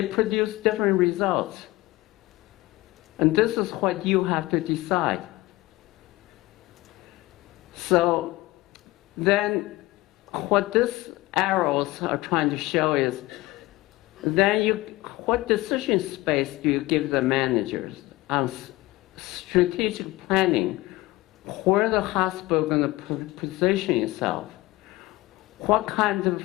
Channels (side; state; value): right; quieter; 19.5 dB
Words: produce different results. And this is what you have to decide. So then what these arrows are trying to show is, then what decision space do you give the managers on strategic planning, where the hospital is going to position itself, what kind of